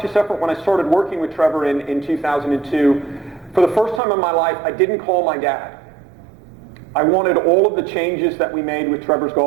effort when I started working with Trevor in 2002. For the first time in my life, I didn't call my dad. I wanted all of the changes that we made with Trevor's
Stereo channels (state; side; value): drops out; left; at 4.0 s